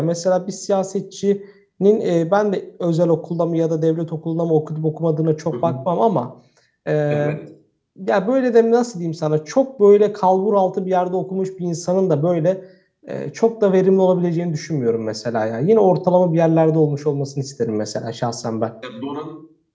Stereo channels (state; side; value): identical; both; correlation 1.00